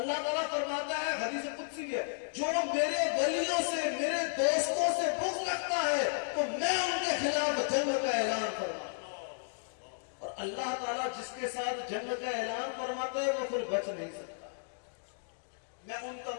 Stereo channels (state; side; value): silent; right; digital silence